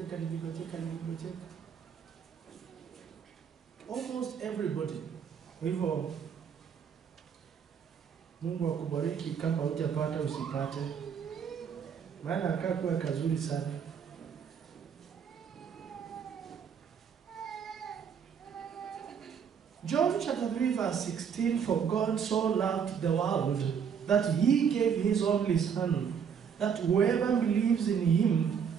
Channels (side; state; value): left; quieter; 7.3 dB